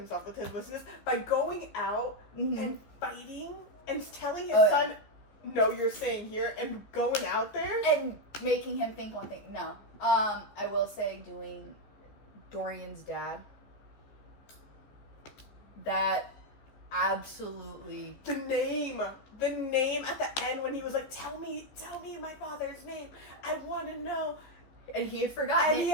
with his wussiness by going out and fighting and telling his son, no, you're staying here, and going out there. And making him think one thing. No. I will say doing Dorian's dad. That absolutely... The name at the end when he was like, tell me my father's name. I want to know. And he had forgotten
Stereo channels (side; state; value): right; late; 14 ms